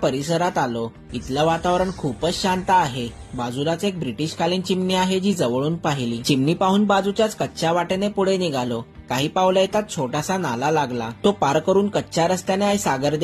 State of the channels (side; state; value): both; identical; correlation 1.00